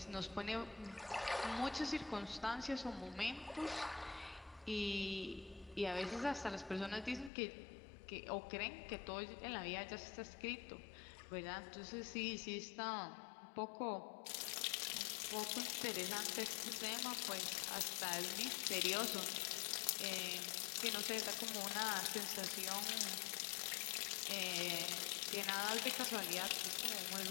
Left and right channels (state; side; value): drops out; right; at 7.3 s